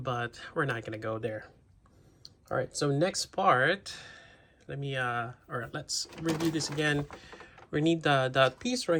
we're not gonna go there. All right, so next part, let's review this again. We need that piece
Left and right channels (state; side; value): identical; both; correlation 1.00